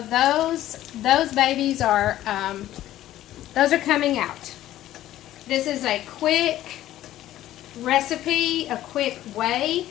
those babies are those are coming out. This is a quick recipe, a quick way,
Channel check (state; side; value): quieter; right; 13.7 dB